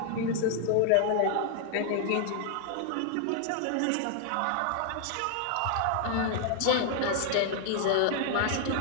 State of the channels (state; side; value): different; both; correlation 0.00